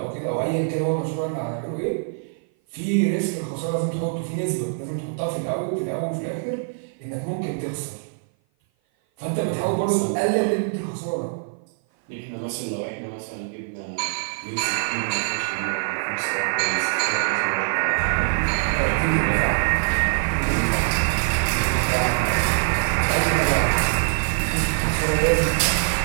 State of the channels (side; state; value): left; silent; 56 dB below the other